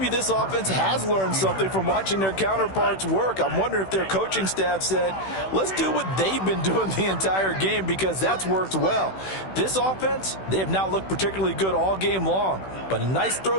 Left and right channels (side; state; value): right; late; 16 ms